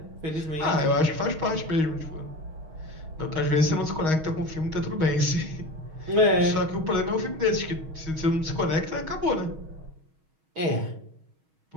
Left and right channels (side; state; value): left; late; 6.3 ms